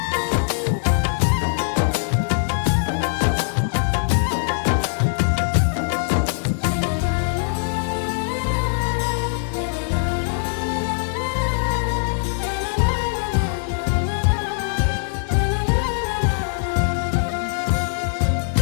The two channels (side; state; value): right; silent; digital silence